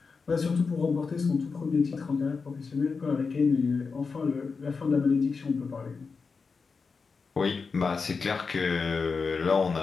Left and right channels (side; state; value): right; quieter; 4.9 dB